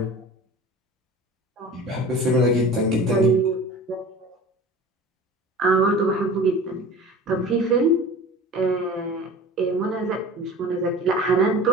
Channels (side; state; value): both; normal; correlation 0.39